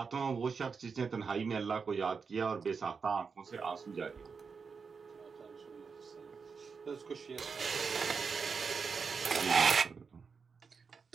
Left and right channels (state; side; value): quieter; left; 5.4 dB